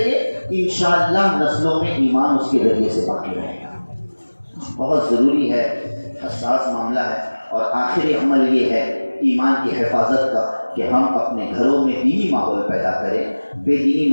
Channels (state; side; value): inverted; both; correlation -1.00